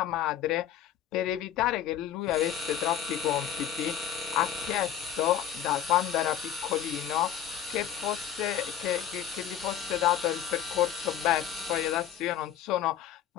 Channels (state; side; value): quieter; right; 10.1 dB